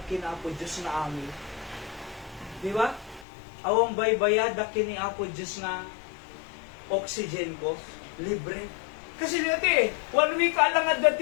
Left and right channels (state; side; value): drops out; right; at 3.2 s